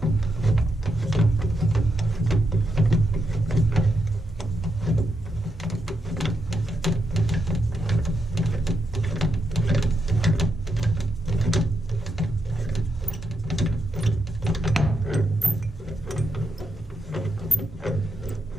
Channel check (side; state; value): both; normal; correlation 0.83